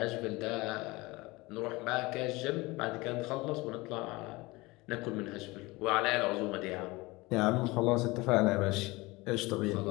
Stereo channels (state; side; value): quieter; right; 22.4 dB